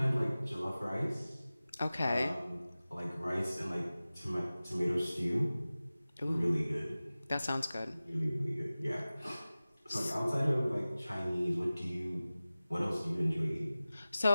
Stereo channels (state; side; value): inverted; both; correlation -0.97